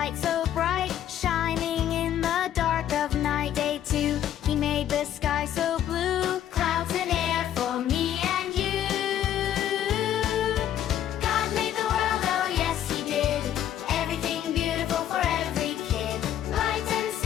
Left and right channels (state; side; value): quieter; right; 10.9 dB